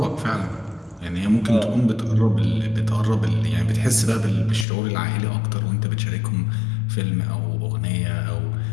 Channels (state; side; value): drops out; right; at 4.7 s